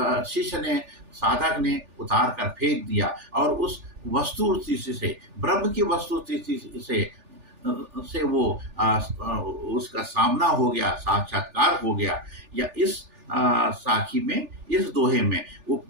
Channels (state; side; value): late; left; 3.4 ms